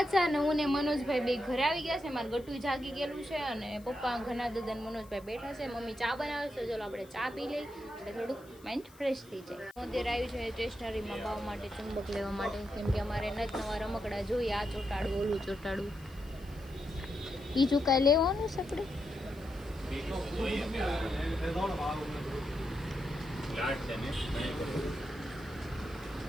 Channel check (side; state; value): left; noise; hiss, 25 dB below the sound